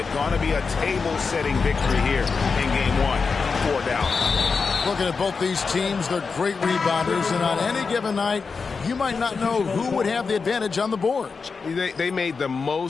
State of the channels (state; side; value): quieter; right; 4.9 dB